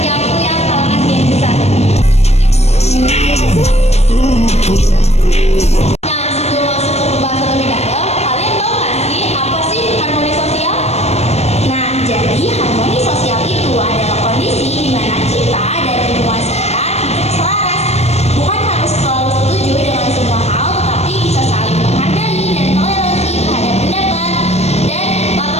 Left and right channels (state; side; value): late; right; 0.31 ms